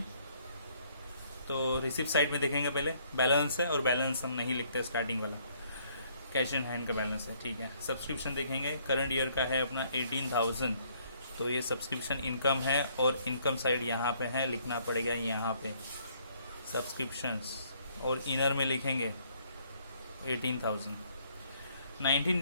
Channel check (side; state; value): both; inverted; correlation -0.65